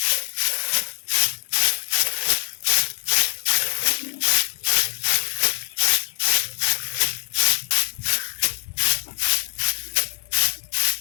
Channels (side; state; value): right; silent; 57 dB below the other